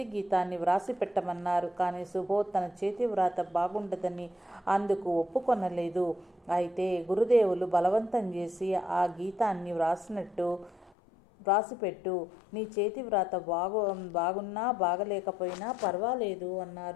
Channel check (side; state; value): right; drops out; at 10.9 s